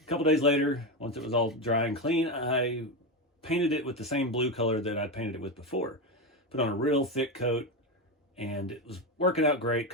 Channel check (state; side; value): normal; both; correlation 0.14